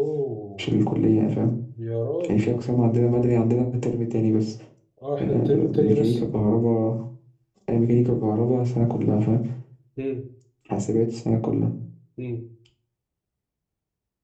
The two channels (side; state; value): both; identical; correlation 1.00